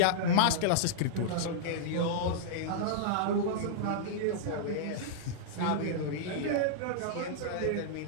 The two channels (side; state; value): both; different; correlation -0.02